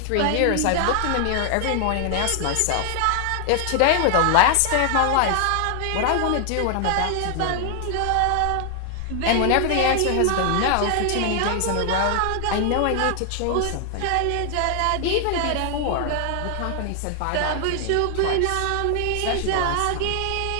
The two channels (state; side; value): different; both; correlation 0.00